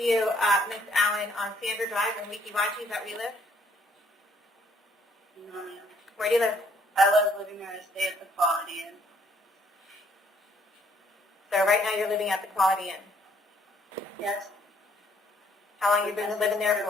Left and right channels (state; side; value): normal; both; correlation 0.66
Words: Ms. Allen, on Sandra Drive in Weeki-Wachi. Is that where you live? No, ma'am. Where do you live? I was living there to stay at the Quality Inn. So right now you're living at the Quality Inn. Yes. How long have you been living there